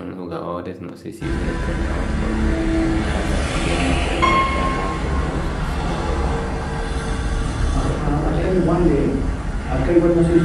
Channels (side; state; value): both; identical; correlation 1.00